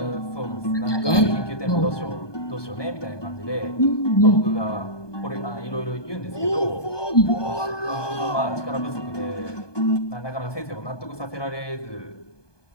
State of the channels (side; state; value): right; late; 1.2 ms